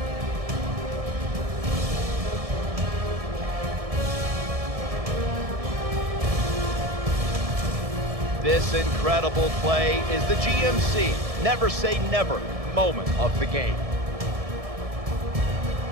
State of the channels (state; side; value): late; left; 1.7 ms